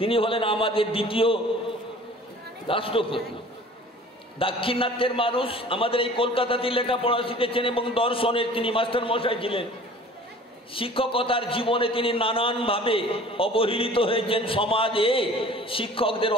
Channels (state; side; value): normal; both; correlation 0.47